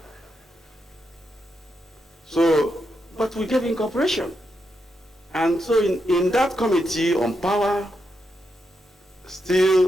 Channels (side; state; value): both; normal; correlation 0.83